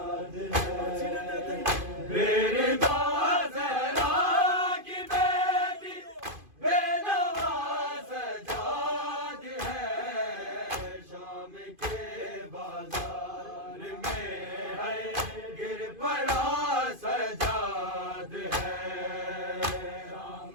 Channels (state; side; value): late; left; 2.5 ms